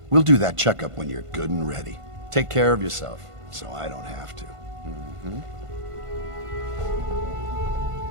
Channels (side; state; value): left; late; 1.5 ms